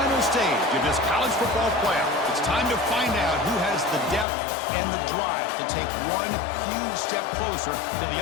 stage of this college football playoff. It's time to find out who has the depth and the drive to take one huge step closer to the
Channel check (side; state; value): right; drops out; at 4.2 s